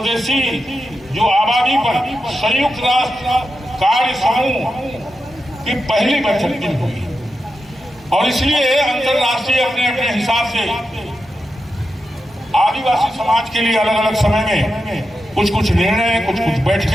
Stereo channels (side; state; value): both; normal; correlation 0.89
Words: जो आबादी पर संयुक्त राष्ट्र कार्य समूह की पहली बैठक हुई और इसलिए अंतरराष्ट्रीय अपने अपने हिसाब से आदिवासी समाज के लिए अलग अलग समय में कुछ कुछ निर्णय, कुछ कुछ